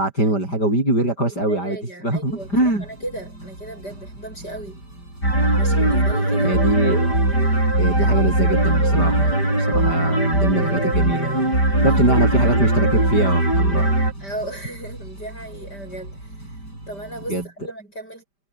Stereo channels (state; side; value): late; right; 5.1 ms